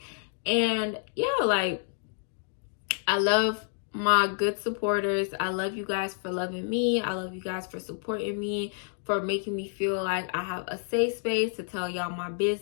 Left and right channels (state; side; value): silent; right; digital silence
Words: And yeah, like, I love my good supporters. I love you guys for loving me. I love you guys for supporting me, for making me feel like I have a safe space to tell y'all my